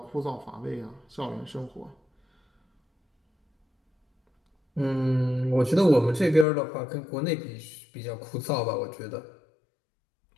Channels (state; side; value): drops out; right; at 6.5 s